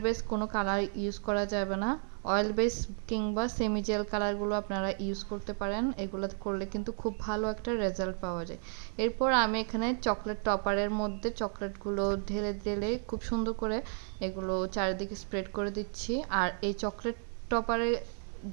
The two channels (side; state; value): left; silent; 56 dB below the other